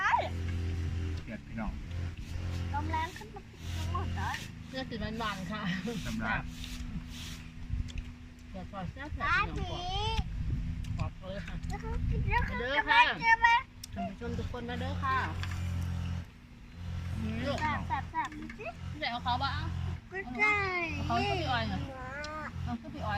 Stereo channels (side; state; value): both; identical; correlation 1.00